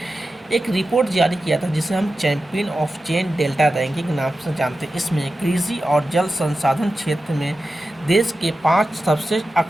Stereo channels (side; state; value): both; normal; correlation 0.92